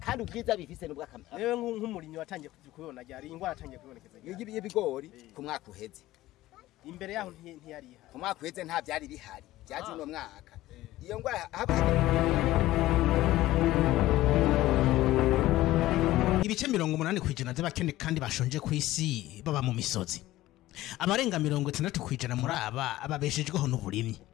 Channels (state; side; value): quieter; right; 16.2 dB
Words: ubwiza bifise nubwo akamera Newe nk'umurinyi watangiye kubibona ryari ingwara atangiye kubonekeza y'ibigori ku mwaka uheze imbere yaho ntiyari ihari ku mwaka uheze nta byari bihari byaje uno mwaka iyo ngwara Ibice 80% by'abakene kandi bashonje ku isi baba mu misozi. Abarenga 60% muri aba ababeshejweho n'uburimyi.